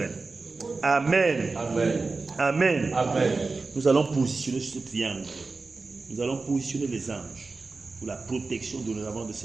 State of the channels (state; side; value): quieter; left; 3.9 dB